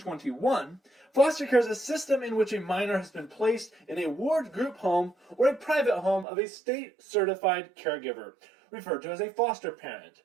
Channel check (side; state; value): left; drops out; at 6.2 s